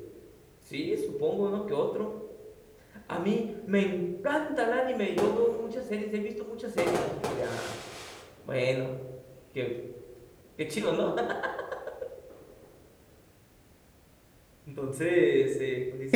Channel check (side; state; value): both; identical; correlation 1.00